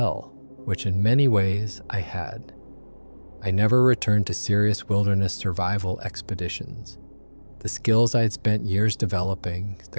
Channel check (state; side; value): inverted; both; correlation -1.00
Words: which in many ways I had. I never returned to serious wilderness survival expeditions. The skills I had spent years developing,